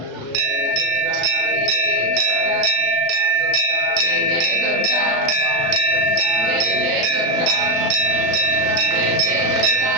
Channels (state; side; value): late; left; 36 ms